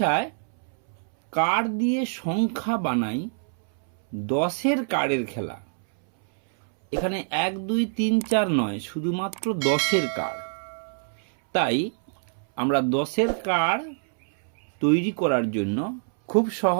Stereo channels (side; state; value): left; silent; 61 dB below the other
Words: কার্ড দিয়ে সংখ্যা বানাই 10-এর কার্ডের খেলা। এখানে 1 2 3 4 নয়, শুধুমাত্র 10-এর কার্ড। তাই আমরা 10-এর কার্ড তৈরি করার জন্য খুব